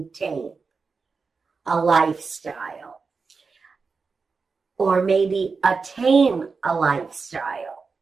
a lifestyle or maybe attain a lifestyle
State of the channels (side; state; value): left; quieter; 4.7 dB